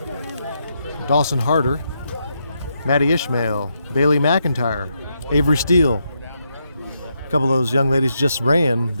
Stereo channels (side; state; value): both; inverted; correlation -0.81